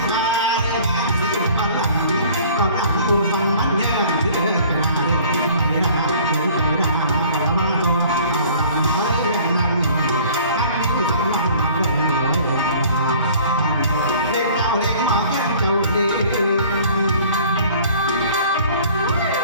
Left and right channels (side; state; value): both; inverted; correlation -0.50